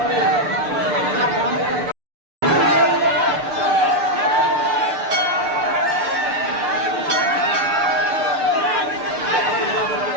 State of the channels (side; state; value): left; late; 6.7 ms